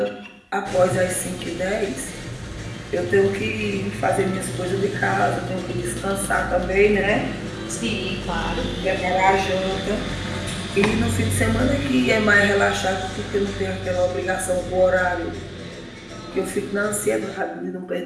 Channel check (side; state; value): both; identical; correlation 1.00